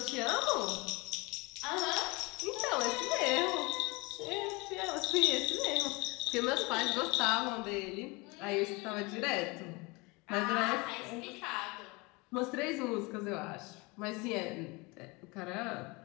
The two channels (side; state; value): right; quieter; 26.1 dB